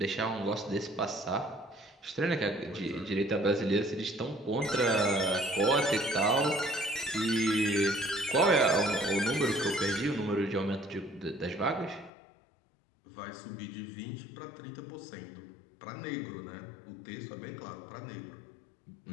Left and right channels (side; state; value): right; drops out; at 12.1 s